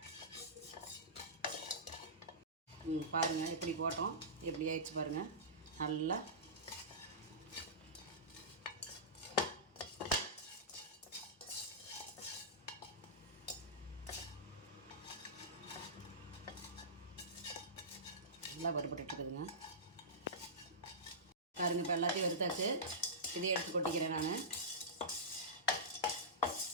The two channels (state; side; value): normal; both; correlation -0.18